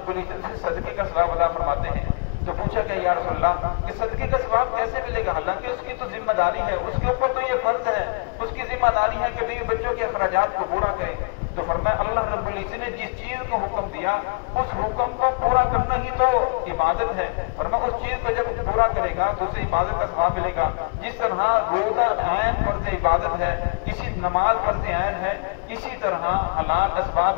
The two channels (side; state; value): right; quieter; 32.3 dB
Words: इज्जत से सदके का सवाब अदा फरमाते हैं। तो पूछा गया या रसूल अल्लाह कि सदके का सवाब कैसे मिलेगा? हालांकि उसकी तो जिम्मेदारी है, उसके ऊपर तो ये फर्ज है, उसकी जिम्मेदारी है कि बीवी बच्चों के अखराजात को पूरा करे। तो फरमाया अल्लाह रब्बुल इज्जत ने जिस चीज को हुक्म दिया उस हुक्म को पूरा करना ही तो इबादत है। फरमाया उस चीज को जब पूरा करेगा तो उसे इबादत का सवाब मिलेगा। जिस तरह रोजा ऐन फर्ज इबादत है, इसी नमाज फर्ज ऐन है, इसी तरह हलाल